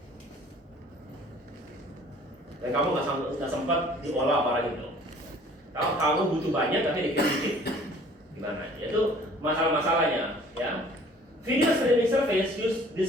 Dan kamu nggak sempat diolah barang itu. Kalau kamu butuh banyak tapi dikirim dikit, gimana? Itu masalah-masalahnya, ya. Video streaming service use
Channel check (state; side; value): normal; both; correlation 0.52